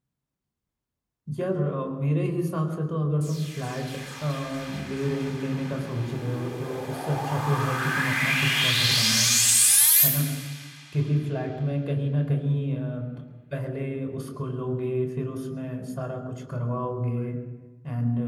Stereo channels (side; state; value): both; identical; correlation 1.00